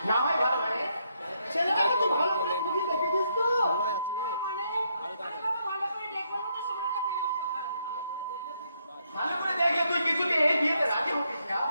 না হয় ভালো মানে ছেলেটাকে তুই ভালো করে বুঝি দেখেছিস তো? ভালো করে দেখে তুই কিছুতে এই বিয়েতে রাজি হতিস না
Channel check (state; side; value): inverted; both; correlation -0.76